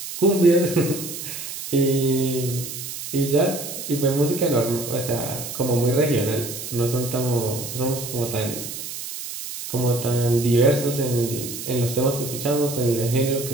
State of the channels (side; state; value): right; noise; hiss, 8 dB below the sound